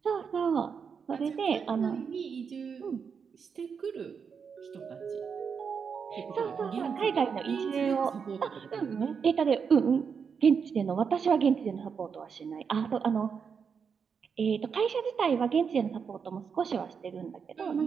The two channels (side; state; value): left; quieter; 6.3 dB